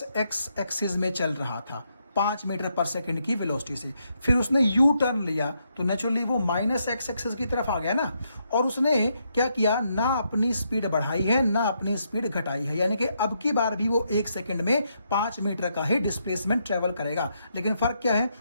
एक्स एक्सिस में चल रहा था 5 मीटर पर सेकंड की वेलोसिटी से, फिर उसने यू टर्न लिया तो नेचुरली वो माइनस एक्स एक्सिस की तरफ आ गया ना। और उसने क्या किया, ना अपनी स्पीड बढ़ाई है ना अपनी स्पीड घटाई है, यानी कि अब की बार भी वो 1 सेकंड में 5 मीटर का ही डिस्प्लेसमेंट ट्रेवल करेगा। लेकिन फर्क क्या है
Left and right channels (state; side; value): inverted; both; correlation -0.79